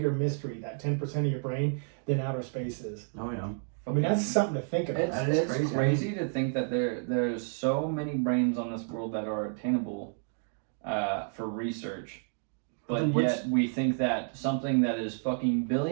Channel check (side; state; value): left; silent; 58 dB below the other